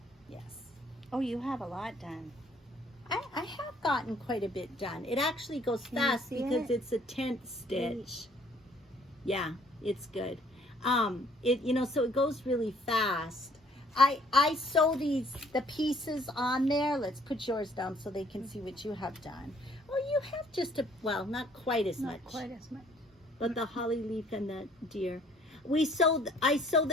Yes. Oh, you have a lot done. I have gotten quite a bit done. It actually goes Can you fast see because it? it's a 10th stitch. Yeah, it's good. So it goes really fast. I sew the pieces on there. Let's put yours down so they can see what you have done. Oh, you have just not quite as much. Not quite as much. But the holly leaf and the deer. I sew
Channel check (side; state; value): both; normal; correlation 0.60